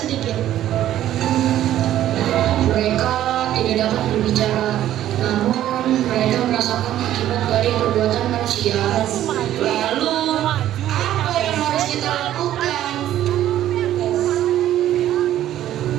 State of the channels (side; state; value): left; quieter; 12.5 dB